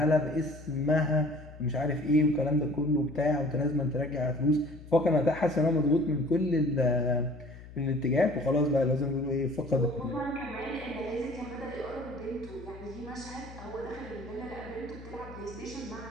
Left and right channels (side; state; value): left; noise; hum, 16 dB below the sound